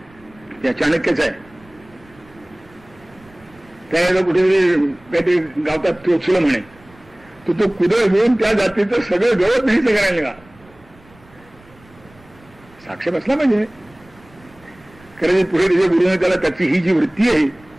त्या चाणक्यच आहे. त्याला कुठेतरी काहीतरी गावतात चोचलं म्हणे, तो कुदळ घेऊन त्या जातीचं सगळं गवत नाही करायला का साक्ष बसला पाहिजे. कारण पुढे त्याच्या गुरुने त्याला त्याची ही जी वृत्ती आहे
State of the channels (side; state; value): right; noise; rumble, 27 dB below the sound